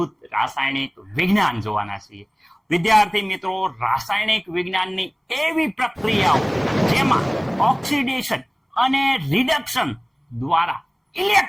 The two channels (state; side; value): identical; both; correlation 1.00